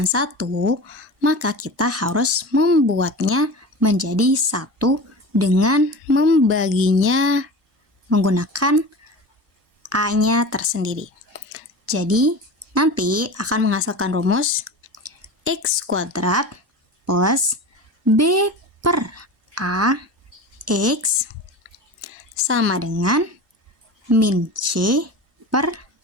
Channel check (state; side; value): normal; both; correlation 0.32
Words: 1, maka kita harus membuatnya menjadi 1 dengan membaginya menggunakan A-nya tersendiri. Jadi, nanti akan menghasilkan rumus x kuadrat plus b per A x sama dengan min c per